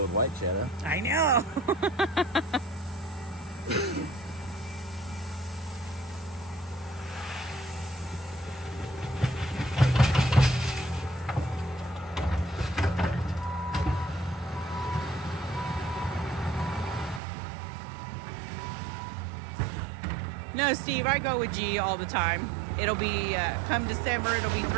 with white shadow. I know. No, Steve, I go with G all the time. It'll be, come December, it'll be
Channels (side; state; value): left; drops out; at 17.2 s